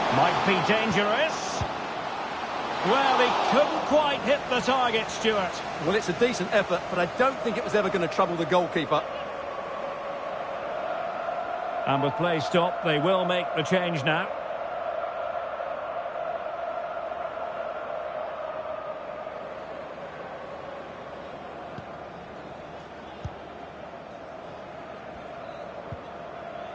Might be dangerous. Well, he couldn't quite hit the target, Stuart. Well, it's a decent effort, but I don't think it was ever going to trouble the goalkeeper. And with play stopped, they will make the change now.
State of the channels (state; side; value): identical; both; correlation 1.00